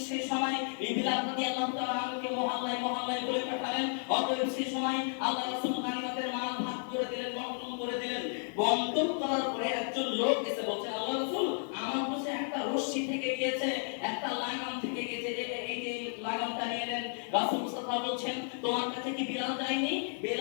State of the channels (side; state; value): right; silent; 56 dB below the other